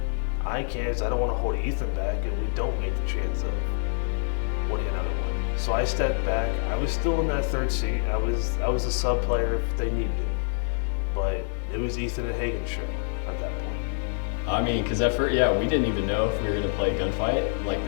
I can, because I don't want to hold Ethan back and we don't make the chance of winning another one. So I stepped back. I was still in that third seat. I was a sub player if they needed it. But it was Ethan and Hagen's show at that point. I mean, because at first, yeah, we didn't even know if we were gonna play Gunfight like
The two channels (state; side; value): silent; right; digital silence